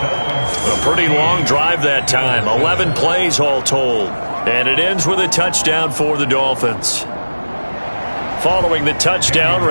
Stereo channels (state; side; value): inverted; both; correlation -1.00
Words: pretty long drive that time. 11 plays all told. And it ends with a touchdown for the Dolphins. Following the touchdown,